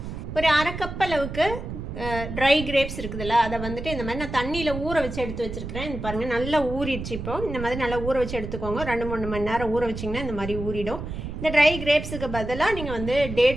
ஒரு அரை கப் அளவுக்கு ட்ரை கிரேப்ஸ் இருக்குதுல்ல, அதை வந்துட்டு இந்த மாதிரி நான் தண்ணியில் ஊற வச்சு எடுத்து வச்சுருக்கிறேன். இது பாருங்கள், நல்லா ஊறிடுச்சு. இப்போ இந்த மாதிரி நல்லா ஊற வச்சு எடுத்துக்கோங்க. 2-3 மணி நேரம் ஊற வச்சிங்கன்னா இந்த மாதிரி ஊறிடும். இந்த ட்ரை கிரேப்ஸுக்கு பதிலாக நீங்கள் வந்து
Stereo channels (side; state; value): right; noise; rumble, 7 dB below the sound